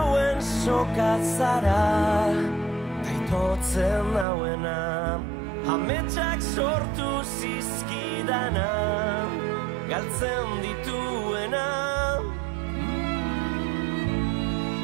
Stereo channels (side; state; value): left; drops out; at 4.2 s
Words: sokatzara, taitotzen nauena, ametsak sortu zizkidana, galtzen dituena.